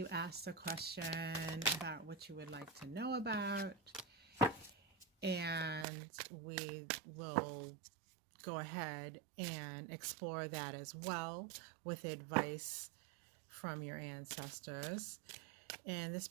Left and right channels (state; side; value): drops out; left; at 5.9 s